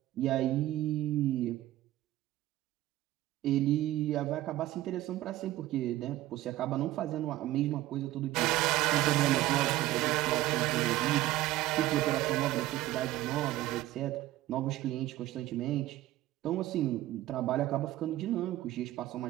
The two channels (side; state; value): left; quieter; 15.7 dB